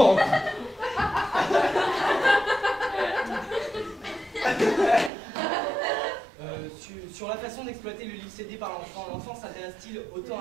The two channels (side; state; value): left; drops out; at 5.1 s